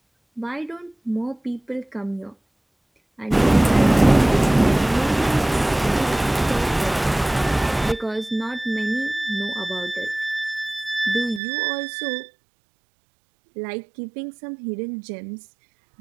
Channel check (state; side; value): drops out; left; at 11.4 s